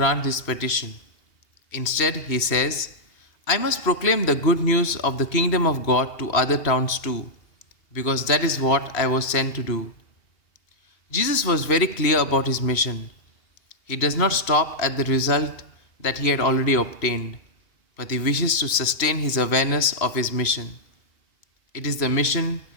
this petition. Instead, he says, I must proclaim the good news of the kingdom of God to other towns too, because that is what I was sent to do. Jesus was very clear about his mission. He does not stop at the result that he had already obtained, but he wishes to sustain his awareness of his mission. It is the mission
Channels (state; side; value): late; right; 2.8 ms